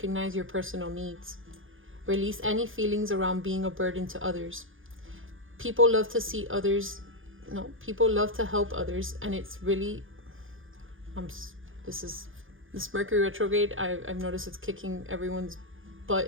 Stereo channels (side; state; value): left; late; 0.58 ms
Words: your personal needs. Release any feelings around being a burden to others. People love to help others, and it's really, this Mercury retrograde, I've noticed it's kicking everyone's